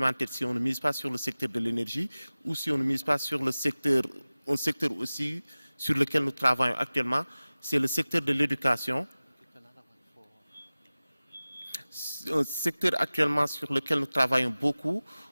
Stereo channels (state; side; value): inverted; both; correlation -0.98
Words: si on ne mise pas sur le secteur de l'énergie, ou si on ne mise pas sur le secteur, un secteur aussi sur lequel nous travaillons actuellement, c'est le secteur de l'éducation. Un secteur actuellement sur lequel nous travaillons beaucoup,